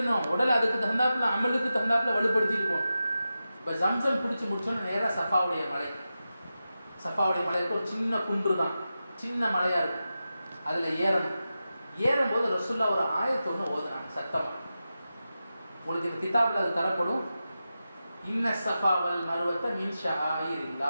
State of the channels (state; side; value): inverted; both; correlation -0.92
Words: உடல் அதுக்கு தகுந்தாப்புல, அமலுக்கு தகுந்தாப்புல வலுப்படுத்திட்டு போகணும். இப்போ ஜம்சம் குடிச்சு முடிச்சோன்னா நேராக சஃபாவுடைய மலை. சஃபாவுடைய மலைக்கு ஒரு சின்ன குன்று தான், சின்ன மலையாக இருக்கும். அதில் ஏறணும். ஏறும்போது ரசூல்லா ஒரு ஆயத்தை ஒன்று ஓதுனாங்க சத்தமாக. உங்களுக்கு இந்த கிதாபில் அது தரப்படும். இன்ன சஃபா வல் மர்வத்த மின்